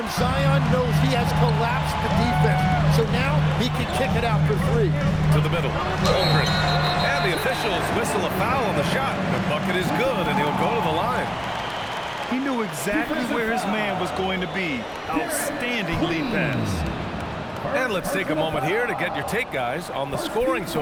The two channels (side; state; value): both; identical; correlation 1.00